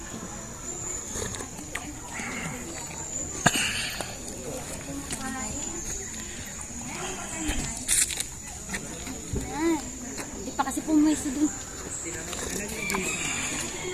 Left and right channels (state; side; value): identical; both; correlation 1.00